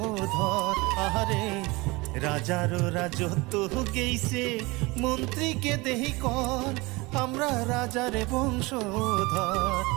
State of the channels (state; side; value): quieter; left; 23.8 dB